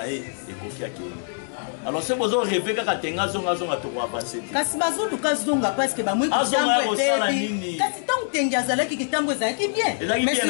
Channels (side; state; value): right; silent; digital silence